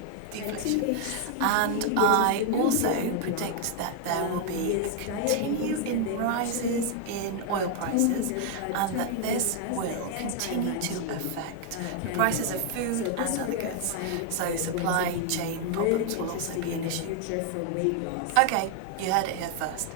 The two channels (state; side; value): different; both; correlation 0.00